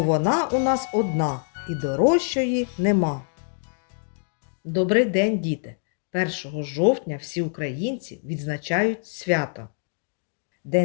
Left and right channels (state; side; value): silent; right; digital silence